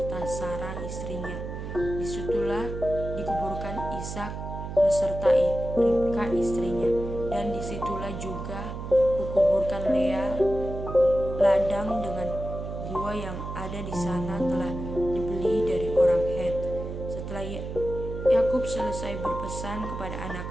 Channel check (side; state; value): right; noise; hum, 7 dB below the sound